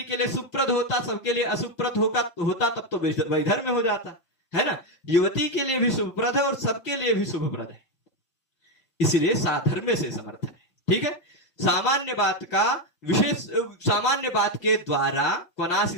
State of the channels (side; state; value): right; late; 5.8 ms